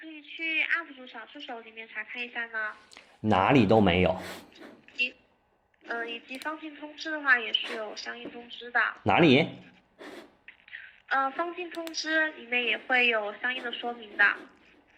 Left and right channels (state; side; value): identical; both; correlation 1.00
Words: 以去 UP 主小助手裡面查看一下呢。哪裡都没有。以及放进通知的話，也是有相應通知的。哪裡？放进通知裡面也會有相應的說明的。